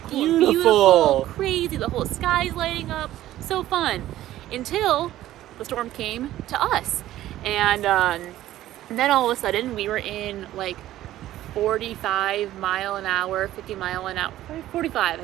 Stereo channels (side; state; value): left; quieter; 14.0 dB